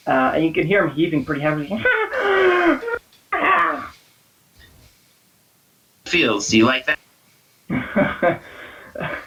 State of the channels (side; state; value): both; identical; correlation 1.00